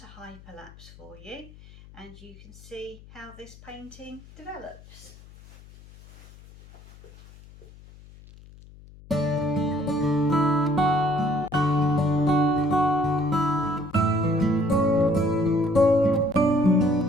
hyperlapse for you, and you can see how this painting develops.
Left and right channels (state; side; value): noise; left; hum, 21 dB below the sound